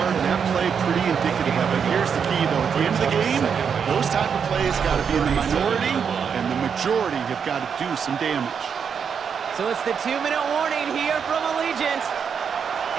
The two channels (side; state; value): left; quieter; 6.9 dB